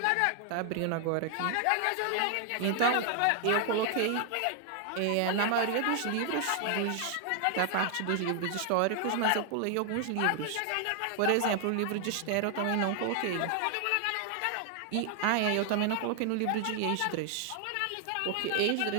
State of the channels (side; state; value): both; different; correlation 0.00